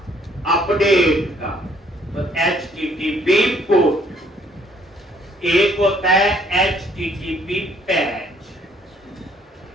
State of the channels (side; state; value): both; normal; correlation 0.64